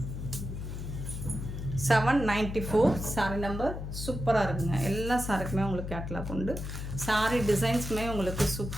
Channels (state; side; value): noise; left; hum, 6 dB below the sound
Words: $794 சாரி நம்பர். சூப்பராக இருக்குங்க. எல்லா சாரிக்குமே உங்களுக்கு கேட்லாக் உண்டு. சாரி டிசைன்ஸுமே உங்களுக்கு